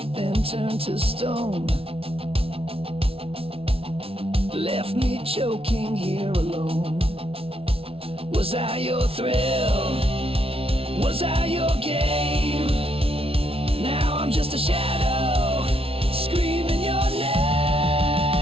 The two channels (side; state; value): left; late; 0.27 ms